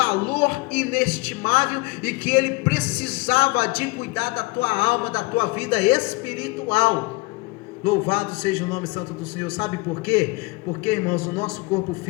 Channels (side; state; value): right; quieter; 25.2 dB